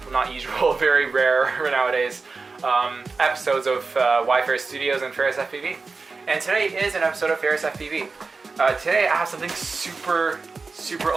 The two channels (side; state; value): left; quieter; 4.2 dB